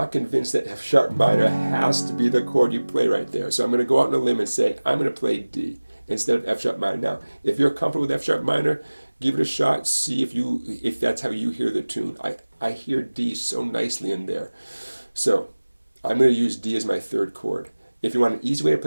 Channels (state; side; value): inverted; both; correlation -1.00